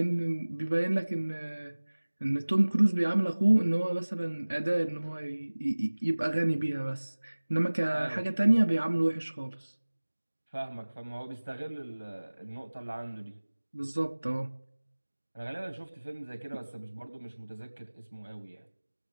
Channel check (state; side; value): inverted; both; correlation -1.00